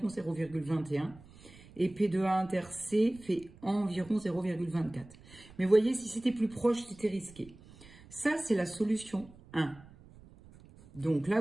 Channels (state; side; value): noise; right; rumble, 22 dB below the sound